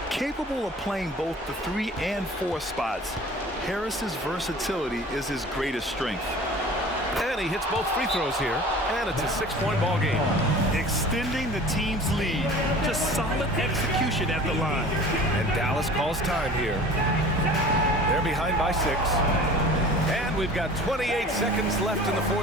Capable of playing both the 3 and 4 spots, Harris's versatility is his greatest strength. And he hits both free throws here, and it's a 6-point ball game. Extending the team's lead. Just solid execution at the line. And Dallas calls time here. They're behind by 6. And we've got 28 seconds left in the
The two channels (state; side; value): normal; both; correlation 0.43